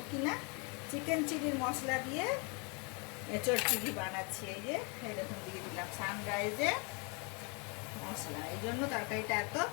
কি না। চিকেন চিলির মশলা দিয়ে এঁচোড় চিলি বানাচ্ছি। এই দেখুন দিয়ে দিলাম সানরাইজের মশলা, এই জন্য তরকারিটা এত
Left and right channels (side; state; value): right; quieter; 33.0 dB